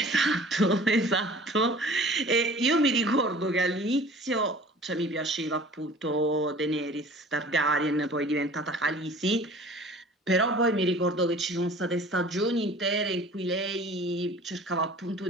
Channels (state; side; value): normal; both; correlation 0.46